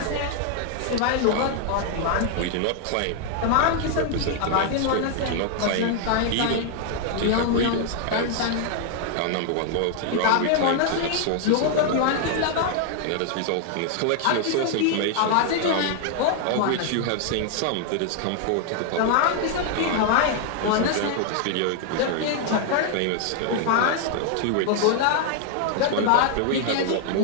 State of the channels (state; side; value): different; both; correlation 0.00